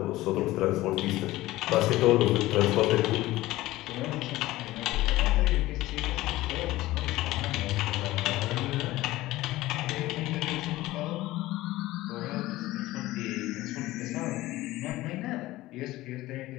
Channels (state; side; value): quieter; right; 17.4 dB